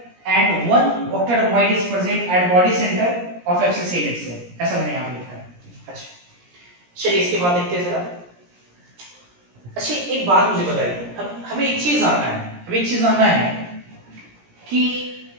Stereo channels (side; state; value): left; late; 17 ms